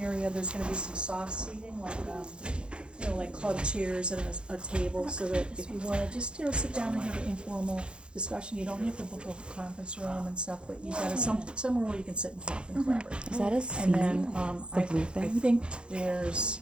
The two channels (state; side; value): late; left; 0.054 ms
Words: area, there's gonna be some soft seating, like, like club chairs and a table, so that if you wanna just, sit down and have an informal discussion, you don't have to book a conference room and stuff, but you've got somewhere where you can sit and talk and collaborate. Is that a seat? And then, The blue I thing? think there's,